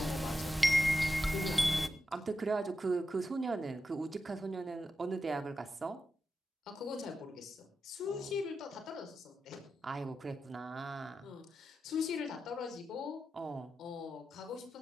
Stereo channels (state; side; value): normal; both; correlation 0.89